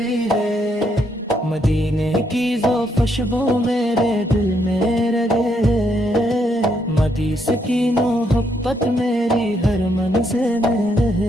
ہے، مدینے کی ذوق خوشبو میرے دل میں رہے، مدیس کی محبت میری ہر منزل میں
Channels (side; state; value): both; normal; correlation 0.75